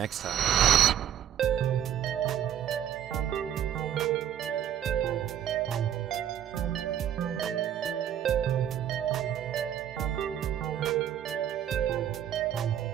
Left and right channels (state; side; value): quieter; left; 10.1 dB